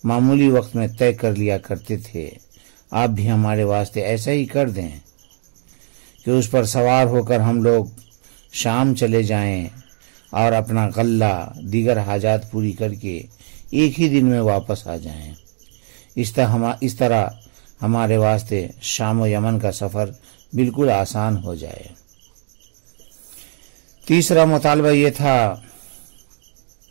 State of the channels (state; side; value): silent; left; digital silence